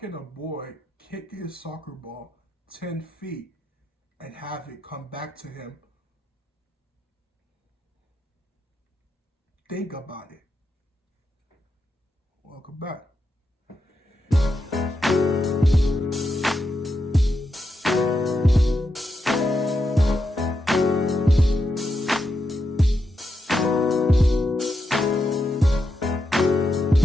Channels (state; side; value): normal; both; correlation 0.85